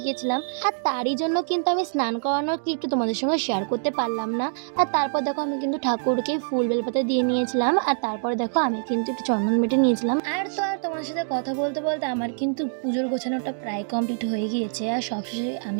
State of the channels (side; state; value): left; silent; digital silence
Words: গিয়েছিলাম, আর তারই জন্য কিন্তু আমি স্নান করানোর ক্লিপটা তোমাদের সঙ্গে শেয়ার করতে পারলাম না। আর তারপর দেখো আমি কিন্তু ঠাকুরকে ফুল বেলপাতা দিয়ে নিয়েছিলাম, আর তারপর দেখো আমি কিন্তু একটু চন্দন বেটে নিয়েছিলাম। আর তো আর তোমাদের সাথে কথা বলতে বলতে আমার কিন্তু পুজোর গোছানোটা প্রায় কমপ্লিট হয়ে গিয়েছে, আর সবশেষে